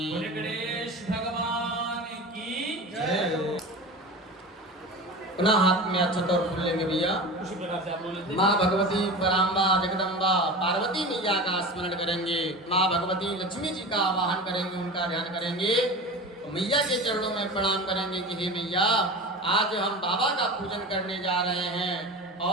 गणेश भगवान की जय हो। पुनः हाथ में अक्षत और फूल लेंगे भैया। उसी प्रकार से आप लोग लेते माँ भगवती पराम्बा जगदम्बा पार्वती मैया का स्मरण करेंगे। माँ भगवती लक्ष्मी जी का आवाहन करेंगे, उनका ध्यान करेंगे। तो मैया के चरणों में प्रणाम करेंगे कि हे मैया, आज हम बाबा का पूजन करने जा रहे हैं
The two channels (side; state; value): both; normal; correlation 0.31